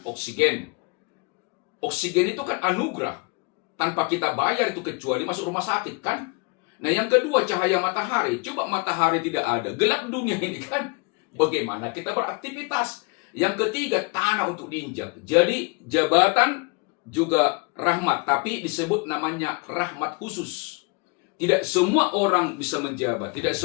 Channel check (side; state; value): right; quieter; 30.5 dB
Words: oksigen. Oksigen itu kan anugerah. Tanpa kita bayar itu kecuali masuk rumah sakit kan? Nah, yang kedua, cahaya matahari. Coba matahari tidak ada, gelap dunia ini kan? Bagaimana kita beraktivitas? Yang ketiga, tanah untuk diinjak. Jadi jabatan juga rahmat, tapi disebut namanya rahmat khusus. Tidak semua orang bisa menjabat, tidak